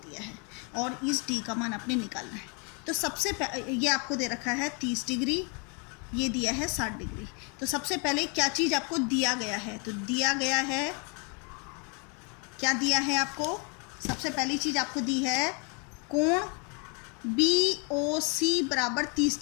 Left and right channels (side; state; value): right; quieter; 35.0 dB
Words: है और इस D का मान आपने निकालना है। तो सबसे ये आपको दे रखा है 30 डिग्री, ये दिया है 60 डिग्री। तो सबसे पहले क्या चीज़ आपको दिया गया है? तो दिया गया है, क्या दिया है आपको? सबसे पहली चीज़ आपको दी है कोण BOC बराबर 30